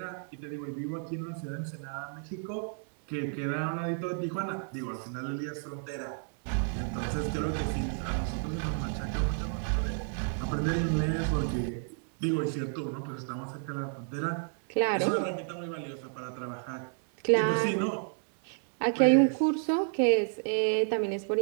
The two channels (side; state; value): left; silent; 57 dB below the other